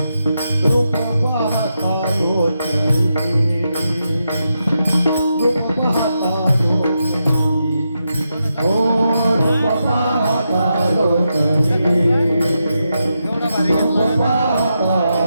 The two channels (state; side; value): inverted; both; correlation -0.86